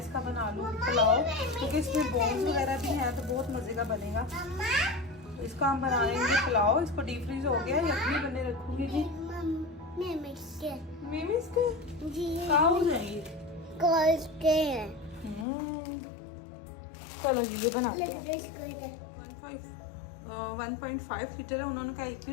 बना लूँ पुलाव, क्योंकि इसमें बोन्स वगैरह भी हैं तो बहुत मज़े का बनेगा। इसका हम बनाएंगे पुलाव। इसको डीप फ्रीज हो गया, यखनी बने रखूंगी जी। मेमिस के जी कहाँ हो जाएंगे चलो जी ये बना 1.5 लीटर है। उन्होंने कहा 1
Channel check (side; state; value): right; drops out; at 15.5 s